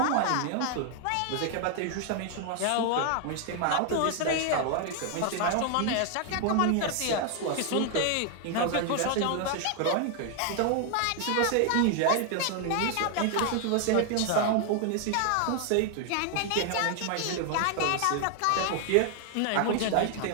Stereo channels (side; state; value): both; different; correlation 0.00